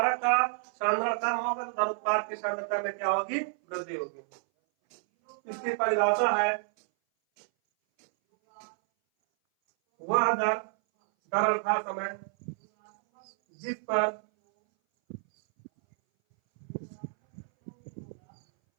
का सांद्रण कम होगा तो उत्पाद की सांद्रता में क्या होगी? वृद्धि होगी। इसकी परिभाषा है वह दर अर्थात समय जिस पर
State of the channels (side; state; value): left; silent; 58 dB below the other